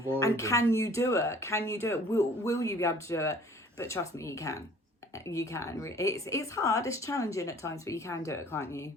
and can you do it? Will you be able to do it? But trust me, you can. You can. It's hard. It's challenging at times, but you can do it, can't you?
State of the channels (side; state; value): both; normal; correlation 0.52